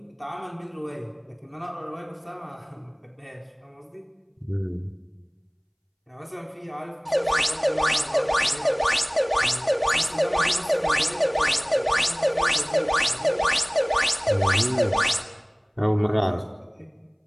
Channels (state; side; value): identical; both; correlation 1.00